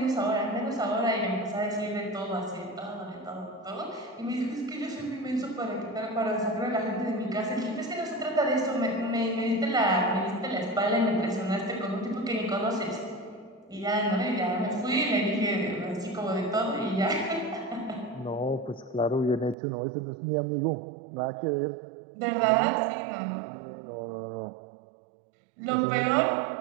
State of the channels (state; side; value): drops out; left; at 19.6 s